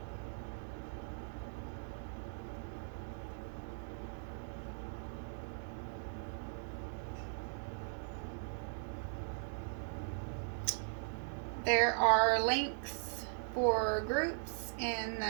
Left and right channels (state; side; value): silent; left; digital silence